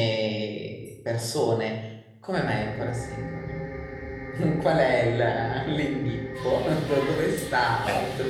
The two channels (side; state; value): both; identical; correlation 1.00